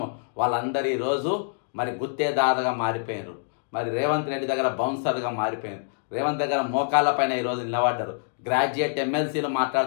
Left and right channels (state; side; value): silent; right; digital silence